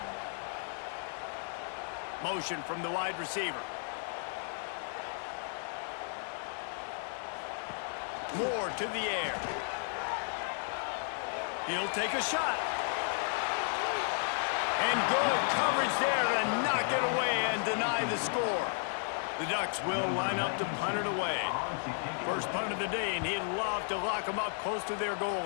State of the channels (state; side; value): silent; right; 55 dB below the other